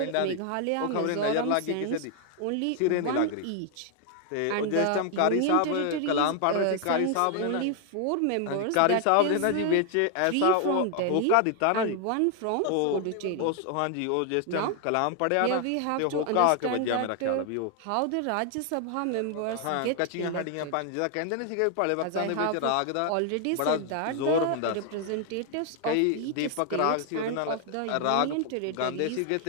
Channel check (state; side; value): different; both; correlation 0.00